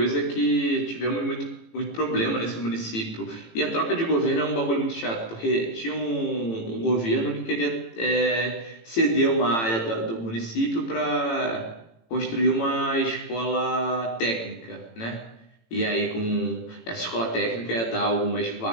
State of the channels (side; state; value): right; late; 18 ms